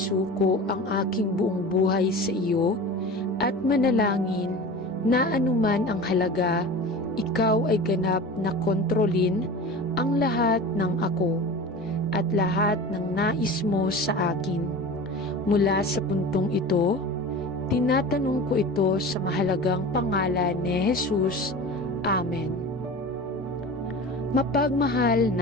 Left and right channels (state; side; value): normal; both; correlation 0.34